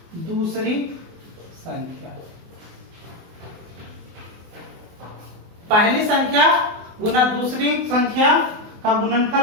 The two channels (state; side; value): late; left; 24 ms